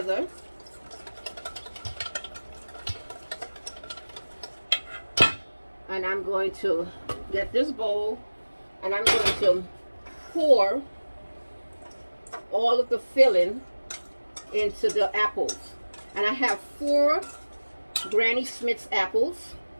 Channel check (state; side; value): inverted; both; correlation -1.00